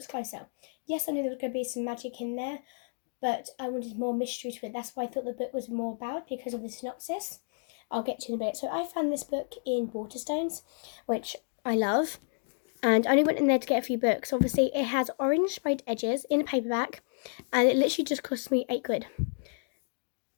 closer. Yes, I knew there was going to be some magic in there, but I wanted more mystery to it. That's why I thought the book was more about, because of the synopsis. I'll get to in a bit. So I found this book in Waterstones, which I love. And I only went in there to get a few books. Obviously, it has orange sprayed edges in a paperback, and it literally just cost me £8.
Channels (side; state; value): right; silent; digital silence